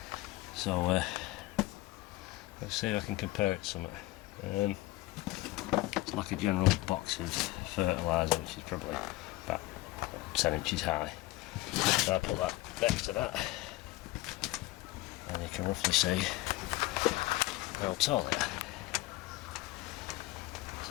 so let's see if I can compare it to something. It's like a general box of fertiliser, which is probably about 10 inches high. So I put that next to that, and you can roughly see how tall they are.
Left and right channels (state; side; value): quieter; right; 18.9 dB